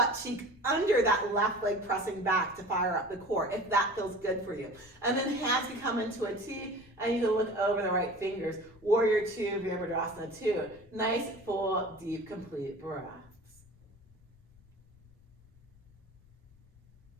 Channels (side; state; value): left; noise; rumble, 27 dB below the sound